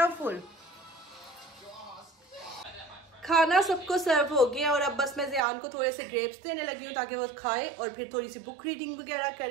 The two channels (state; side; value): drops out; left; at 5.4 s